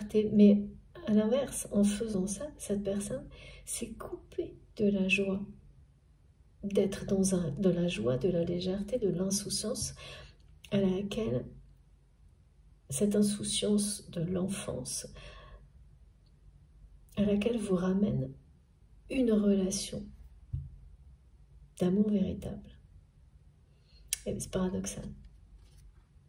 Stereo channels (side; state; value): both; identical; correlation 1.00